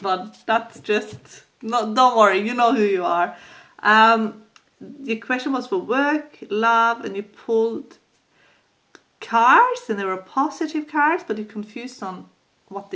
but that's just, don't worry, you know who you are. The question was for work, love, and you pulled cards, and they were positive cards, but you're confused on what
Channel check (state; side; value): identical; both; correlation 1.00